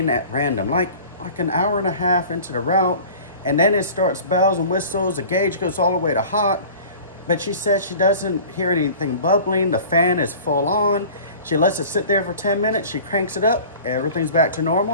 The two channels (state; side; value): inverted; both; correlation -0.42